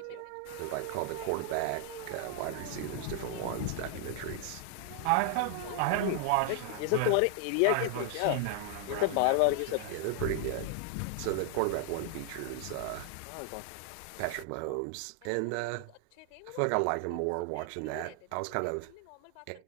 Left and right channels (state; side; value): different; both; correlation 0.00